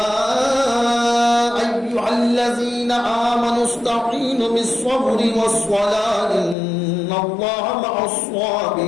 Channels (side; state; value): right; drops out; at 6.6 s